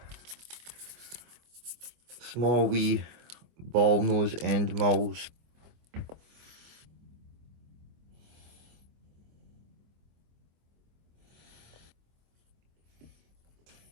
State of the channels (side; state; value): left; late; 25 ms